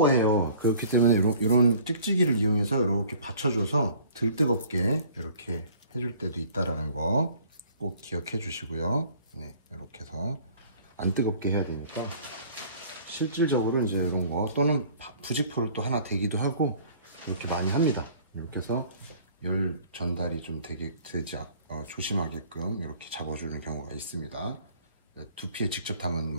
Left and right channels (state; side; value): inverted; both; correlation -0.52